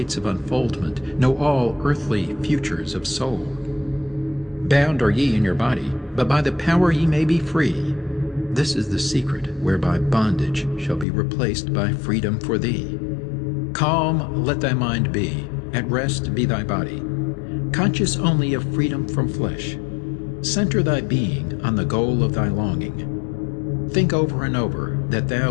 of unfoldment. Know all earthly futures of soul. Bound are ye in your body, but by the power ye may be free. This is the secret whereby bondage shall be replaced by freedom for thee. Calm let thy mind be, at rest be thy body. Conscious only of freedom from flesh. Center thy being on the goal of thy longing. Think over and over that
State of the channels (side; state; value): right; drops out; at 11.1 s